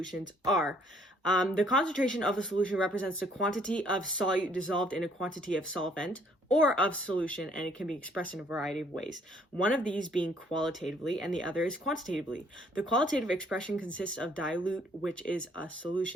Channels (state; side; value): normal; both; correlation 0.63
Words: are. The concentration of a solution represents the quantity of solute dissolved in a quantity of solvent or of solution, and it can be expressed in a variety of ways. One of these being qualitatively and the other is quantitatively. The qualitative expression consists of dilute, which is a